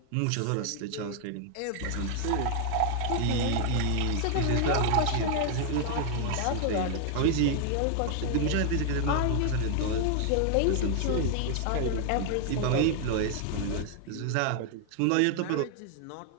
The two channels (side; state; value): both; different; correlation 0.00